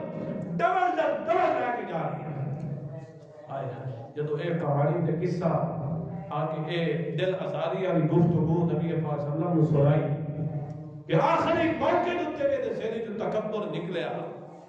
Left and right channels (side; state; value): both; identical; correlation 1.00